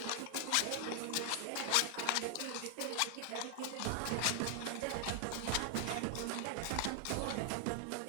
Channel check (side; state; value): both; different; correlation 0.00